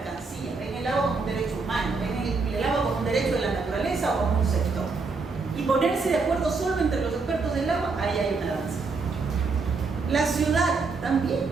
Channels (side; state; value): left; quieter; 4.3 dB